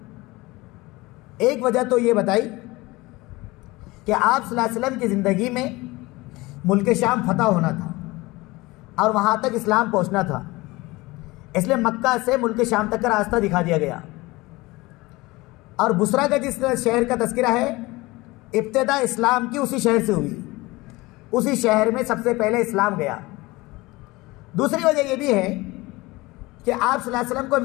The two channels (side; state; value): right; quieter; 21.5 dB